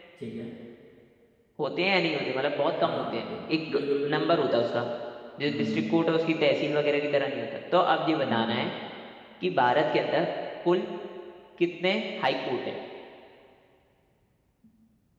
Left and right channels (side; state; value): both; identical; correlation 1.00